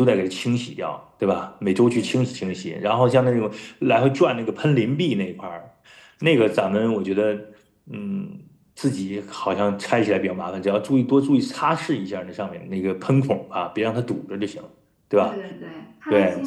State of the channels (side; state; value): both; identical; correlation 1.00